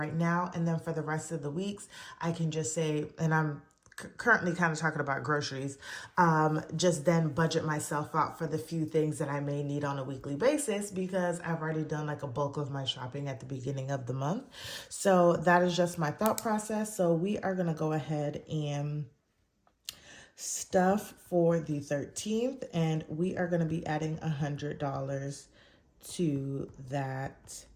now? And then for the rest of the weeks, I can just say, and I'm currently kind of talking about groceries, just then budget myself out for the few things that I may need on a weekly basis, because I've already done like a bulk of my shopping at the beginning of the month. So that is just my thought process. So we are going to go ahead and stuff for the 13th, and we are going to be adding $100 to that.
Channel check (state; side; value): identical; both; correlation 1.00